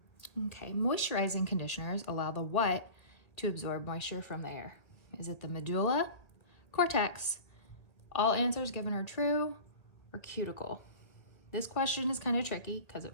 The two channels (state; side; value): late; right; 1.8 ms